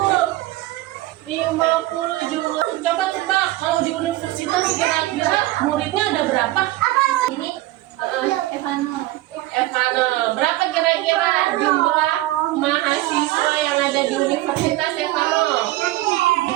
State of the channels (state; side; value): quieter; left; 17.4 dB